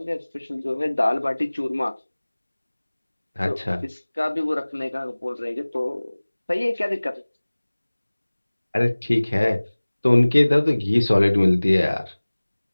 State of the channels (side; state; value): both; inverted; correlation -1.00